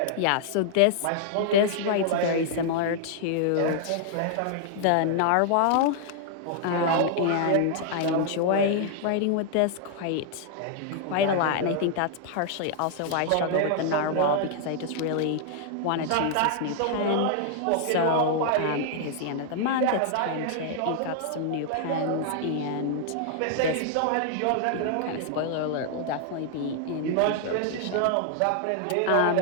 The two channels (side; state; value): both; different; correlation -0.01